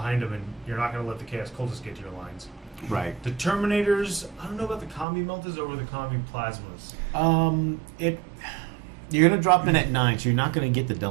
them, and you're not going to let the Chaos cultists get to your lines. Right. The Terminators, I don't know about the combi meltas over the combi plasmas. You're gonna drop in at 9, so you're not gonna get the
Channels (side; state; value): left; drops out; at 5.1 s